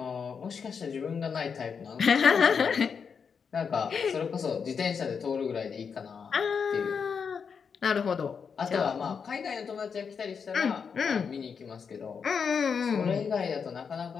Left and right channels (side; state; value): right; quieter; 6.2 dB